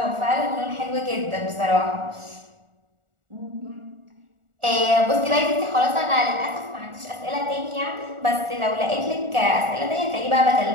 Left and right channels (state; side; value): late; left; 1.4 ms